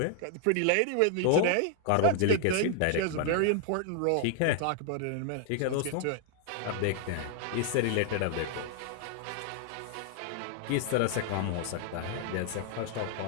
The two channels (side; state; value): both; different; correlation 0.00